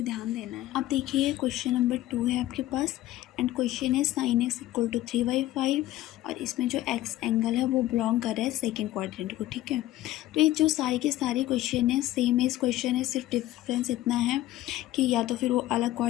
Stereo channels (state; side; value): quieter; right; 14.9 dB